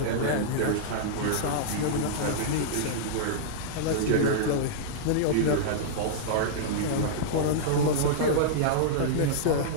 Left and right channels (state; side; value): different; both; correlation -0.02